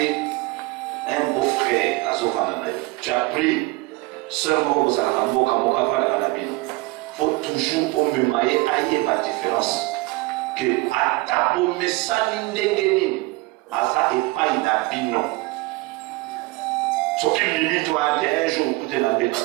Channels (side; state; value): left; quieter; 22.3 dB